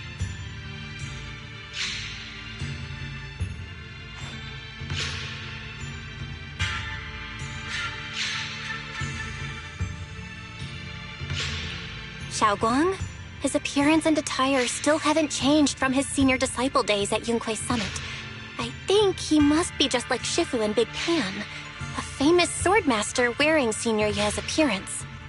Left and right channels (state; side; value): identical; both; correlation 1.00